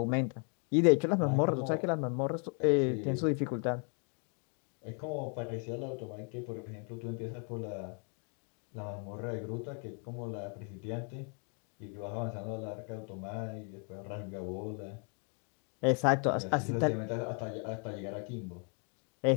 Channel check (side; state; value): right; quieter; 39.9 dB